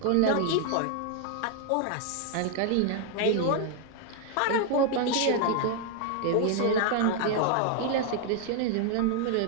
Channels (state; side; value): different; both; correlation 0.00